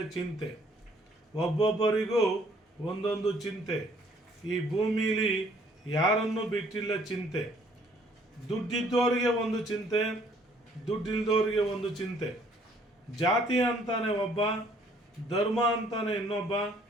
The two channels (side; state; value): both; normal; correlation 0.61